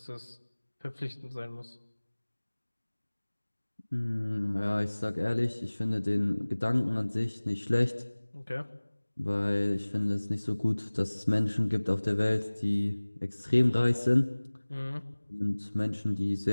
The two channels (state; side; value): inverted; both; correlation -1.00